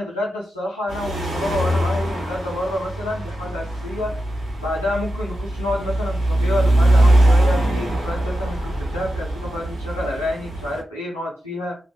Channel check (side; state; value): both; normal; correlation 0.90